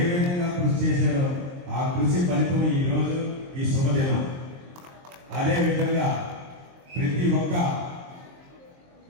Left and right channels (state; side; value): late; left; 23 ms